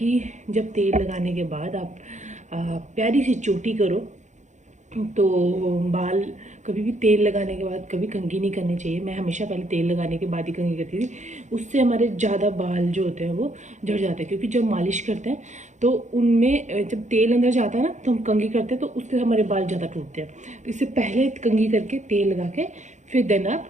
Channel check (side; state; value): left; late; 0.35 ms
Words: जब तेल लगाने के बाद आप प्यारी सी चोटी करो, तो बाल कभी भी तेल लगाने के बाद कभी कंघी नहीं करनी चाहिए। मैं हमेशा पहले तेल लगाने के बाद ही कंघी करती थी, उससे हमारे ज़्यादा बाल जो होते हैं वो झड़ जाते हैं। क्योंकि जब मालिश करते हैं तो उनमें जब तेल अंदर जाता है ना, तो हम कंघी करते हैं, तो उससे हमारे बाल ज़्यादा टूटते हैं। तो इससे पहले कंघी करके तेल लगा के फिर देन आप